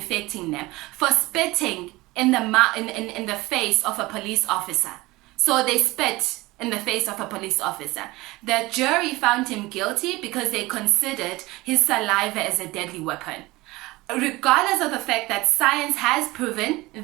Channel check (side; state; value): left; quieter; 20.6 dB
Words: them, for spitting in the face of a police officer. So they spit in the face of a police officer. The jury found him guilty because they considered his saliva as a deadly weapon. Regardless of the fact that science has proven